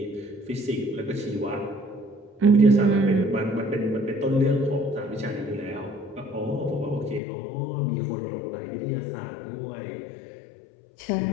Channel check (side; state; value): right; drops out; at 7.2 s